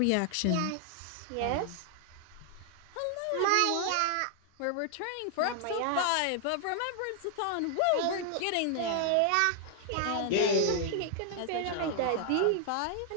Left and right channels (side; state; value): both; different; correlation 0.00